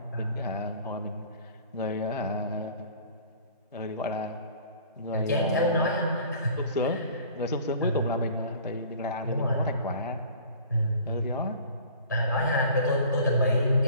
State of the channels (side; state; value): both; inverted; correlation -0.47